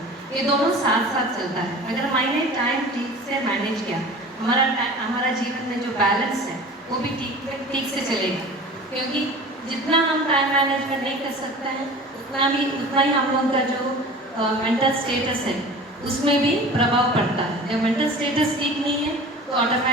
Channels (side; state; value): both; normal; correlation 0.39